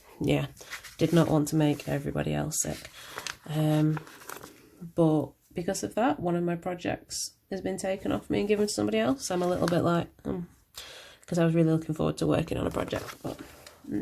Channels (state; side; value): identical; both; correlation 1.00